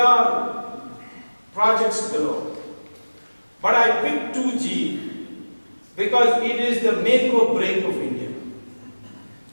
projects below. But I picked 2G because it is the make or break of India.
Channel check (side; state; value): both; inverted; correlation -1.00